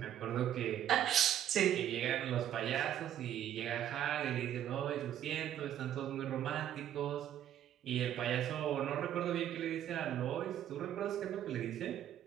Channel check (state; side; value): quieter; left; 10.9 dB